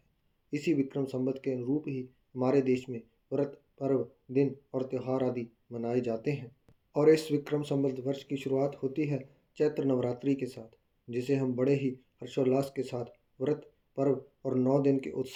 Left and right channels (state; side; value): identical; both; correlation 1.00